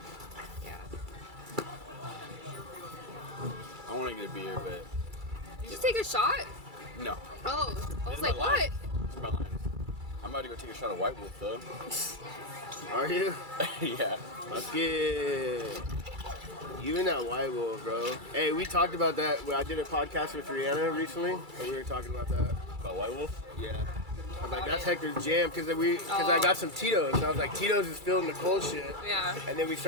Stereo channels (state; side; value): late; left; 2.3 ms